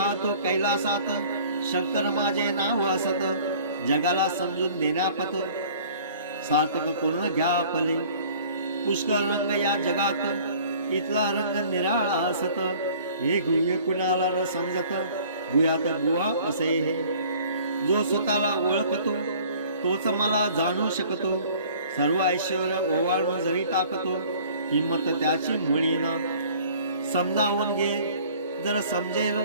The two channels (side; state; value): both; inverted; correlation -0.51